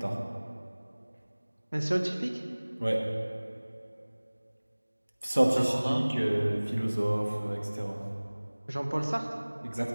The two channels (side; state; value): both; inverted; correlation -1.00